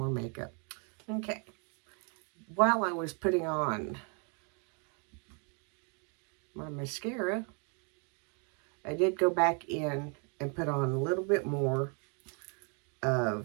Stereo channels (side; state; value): left; quieter; 37.3 dB